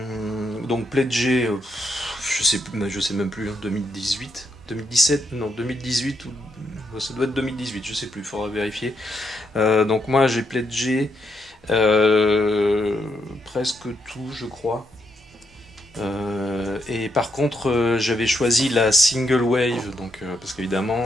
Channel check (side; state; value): both; normal; correlation 0.78